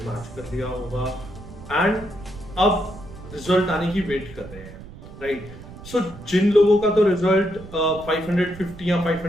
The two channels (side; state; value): right; noise; rumble, 16 dB below the sound